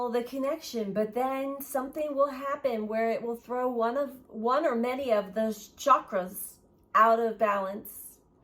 the connection, but then something will happen where it will throw one or many of those chakras out of balance,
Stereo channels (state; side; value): identical; both; correlation 1.00